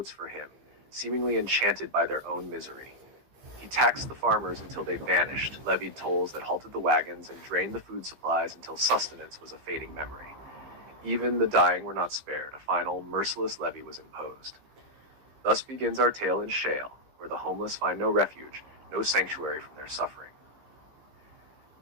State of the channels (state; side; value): late; left; 15 ms